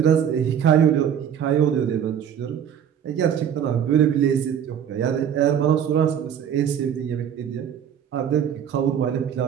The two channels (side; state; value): left; quieter; 8.8 dB